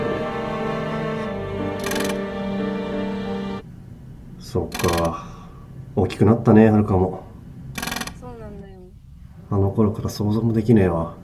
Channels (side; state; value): both; identical; correlation 1.00